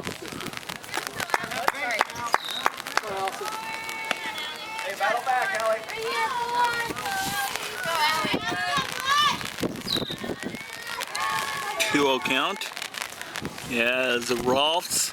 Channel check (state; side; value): identical; both; correlation 1.00